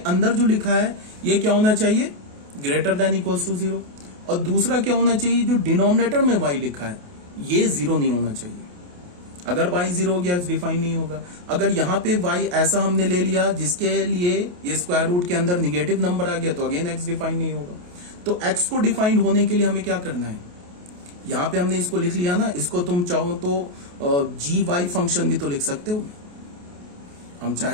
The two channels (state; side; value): late; left; 28 ms